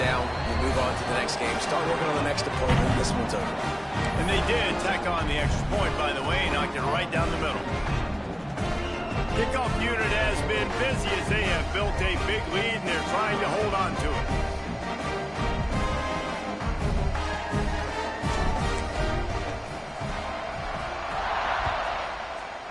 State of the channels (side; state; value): both; identical; correlation 1.00